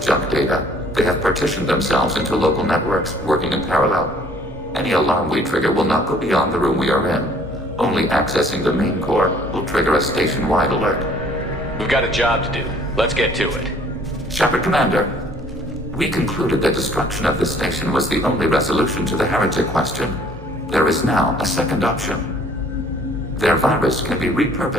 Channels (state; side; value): normal; both; correlation 0.57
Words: data. They have partitioned themselves into local networks, working in parallel. Any alarm we trigger will not go beyond the room we are in. Only accessing the main core will trigger a station-wide alert. We've got a job to do. Let's get to it. Shepard, Commander. We concluded that destruction of this station was the only resolution to the heretic question. There is now a second option. Their virus can be